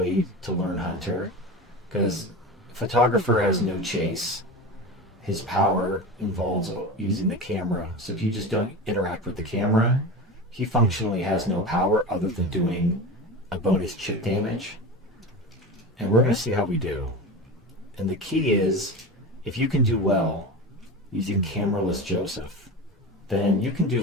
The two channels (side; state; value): both; normal; correlation 0.27